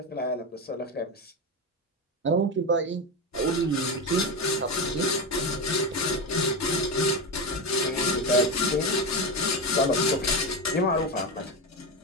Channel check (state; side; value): normal; both; correlation 0.16